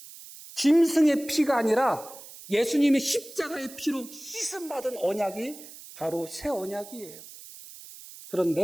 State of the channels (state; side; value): noise; right; hiss, 17 dB below the sound